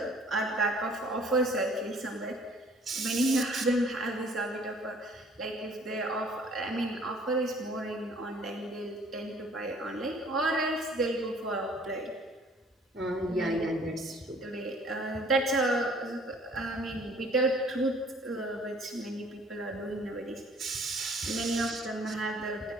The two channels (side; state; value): both; normal; correlation 0.56